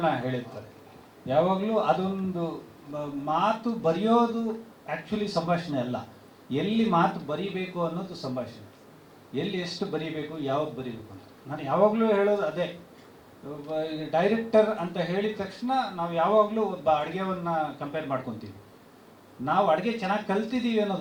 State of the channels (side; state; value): both; identical; correlation 1.00